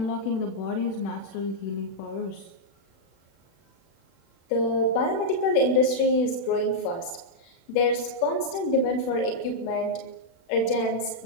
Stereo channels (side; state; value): right; late; 36 ms